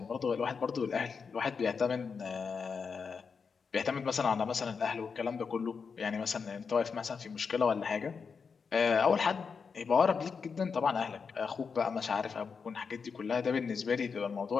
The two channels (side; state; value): right; quieter; 5.6 dB